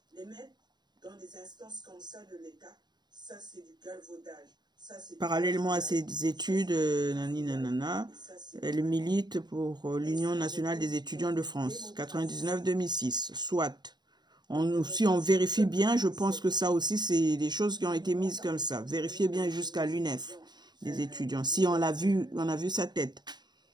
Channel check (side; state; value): left; late; 0.21 ms